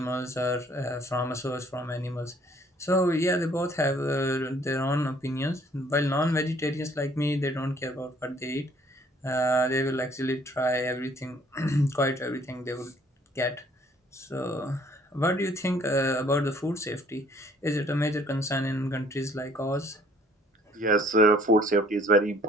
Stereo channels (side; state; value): both; normal; correlation 0.60